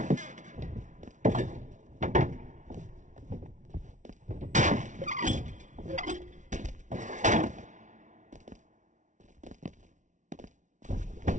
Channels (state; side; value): late; left; 0.36 ms